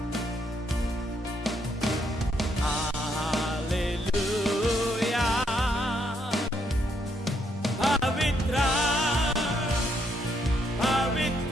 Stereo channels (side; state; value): both; normal; correlation 0.74